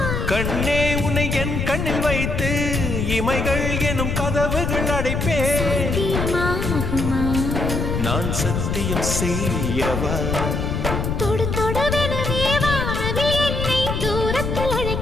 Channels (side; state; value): left; noise; rumble, 1 dB below the sound